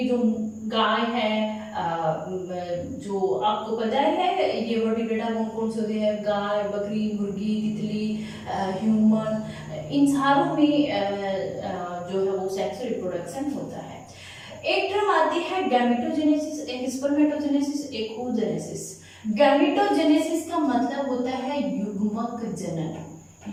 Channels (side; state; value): both; identical; correlation 1.00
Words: जो गाय है, जो आपको पता है ये वर्टिब्रेटा कौन कौन से होते हैं, गाय, बकरी, मुर्गी, तितली, ह्यूमन, इन सारों में जो है वो सेक्सुअल रिप्रोडक्शन होता है। एक टर्म आती है गैमेटोजेनेसिस, एक स्पर्मेटोजेनेसिस, एक oogenesis। गैमेटोजेनेसिस का मतलब होता है युग्मक जनन।